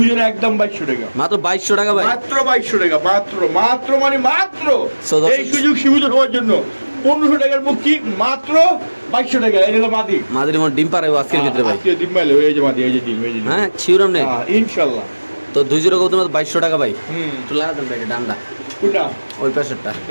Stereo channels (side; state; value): both; inverted; correlation -1.00